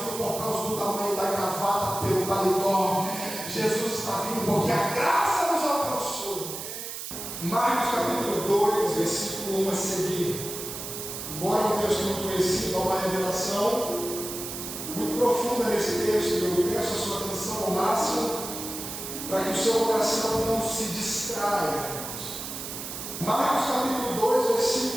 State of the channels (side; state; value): right; noise; hiss, 8 dB below the sound